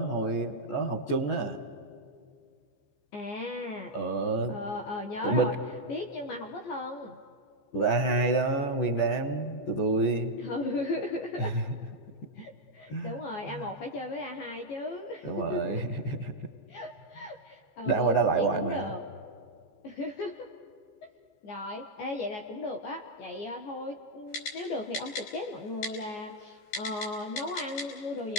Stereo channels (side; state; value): right; late; 15 ms